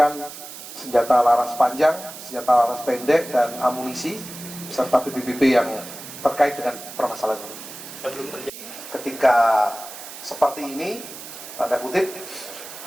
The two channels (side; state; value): right; noise; hiss, 13 dB below the sound